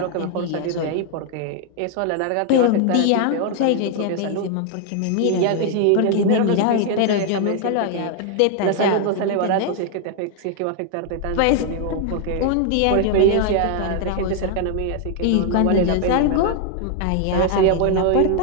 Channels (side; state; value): both; different; correlation 0.00